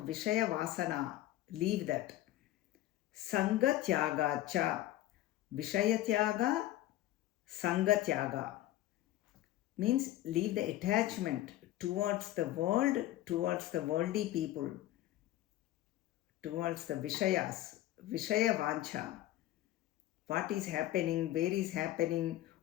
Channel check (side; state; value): right; quieter; 14.8 dB